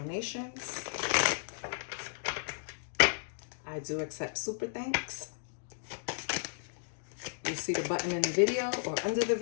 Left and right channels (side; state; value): right; silent; digital silence